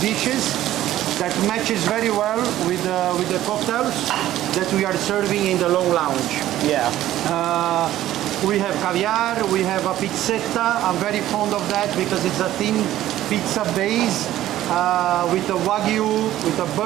that matches very well with the cocktails that we are serving in the long lounge. Yeah. We have caviar, we have a pizzetta. I'm very fond of that because it's a thin pizza base with a wagyu, with a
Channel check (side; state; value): left; quieter; 13.7 dB